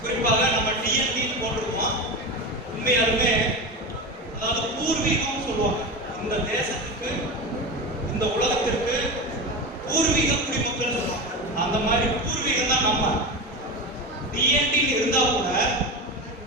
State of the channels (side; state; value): both; normal; correlation 0.22